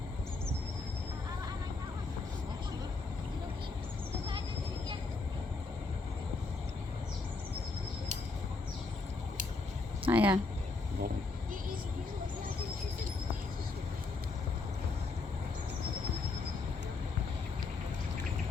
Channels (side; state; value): right; quieter; 3.9 dB